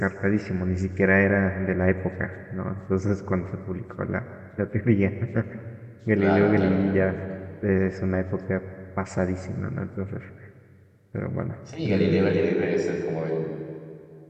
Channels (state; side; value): identical; both; correlation 1.00